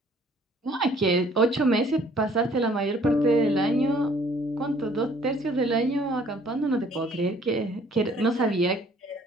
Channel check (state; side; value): normal; both; correlation 0.58